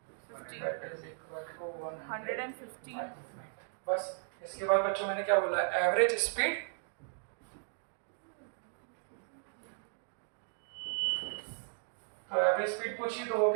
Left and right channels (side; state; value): left; silent; digital silence